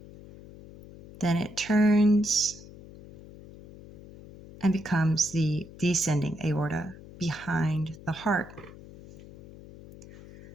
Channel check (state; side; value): noise; left; hum, 18 dB below the sound